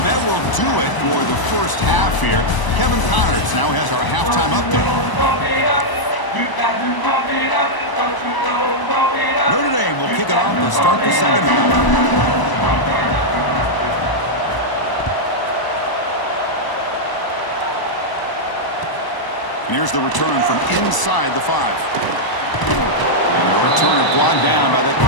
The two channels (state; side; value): late; right; 1.0 ms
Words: that will do it for the first half here. Kevin Connors now has our halftime update. Notre Dame will kick it off to start the second half. And here's the return from inside the 5. And the returner brought down by that